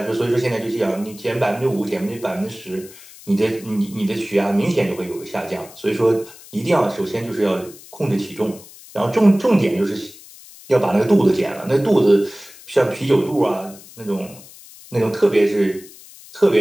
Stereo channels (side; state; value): left; noise; hiss, 20 dB below the sound